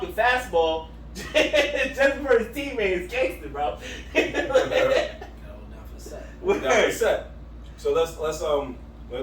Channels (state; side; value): identical; both; correlation 1.00